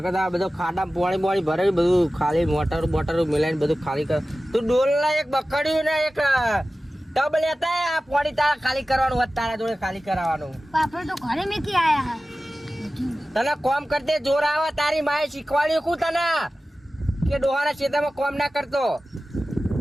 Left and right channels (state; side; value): normal; both; correlation 0.96